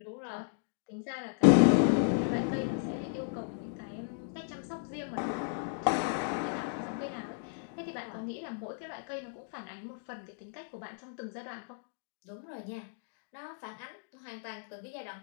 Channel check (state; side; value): silent; right; digital silence